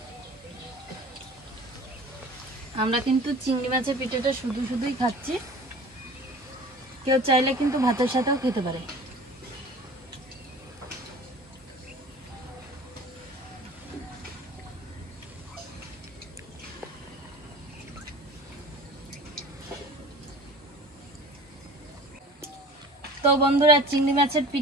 আমরা কিন্তু চিংড়ি মাছের পিঠাটা শুধু শুধুই খাচ্ছি, কেউ চাইলে কিন্তু ভাতের সাথেও খেতে পারে। তো বন্ধুরা, চিংড়ি মাছের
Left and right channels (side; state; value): both; normal; correlation 0.42